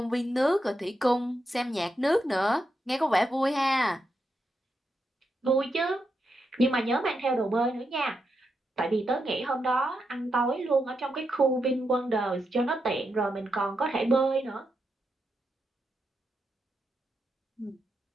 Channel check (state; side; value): normal; both; correlation 0.84